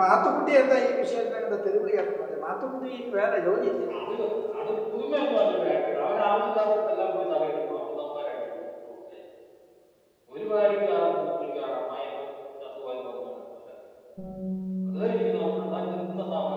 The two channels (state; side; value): identical; both; correlation 1.00